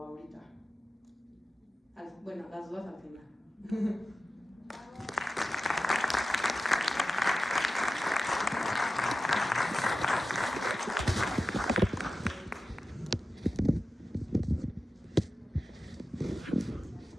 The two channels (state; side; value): normal; both; correlation 0.93